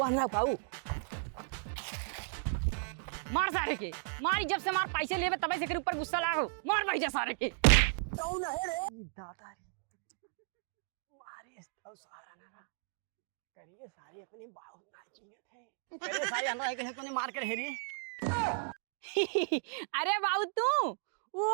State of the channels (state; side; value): silent; left; digital silence